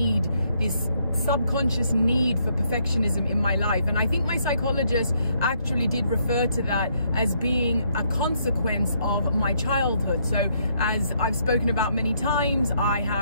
this subconscious need for perfectionism in my life, and I think my psychologist actually did refer to that as being a consequence of my childhood. So as I've spoken about many times, I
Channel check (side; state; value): both; inverted; correlation -0.72